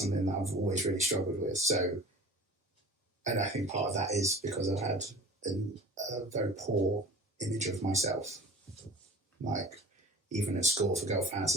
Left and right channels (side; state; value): both; normal; correlation 0.41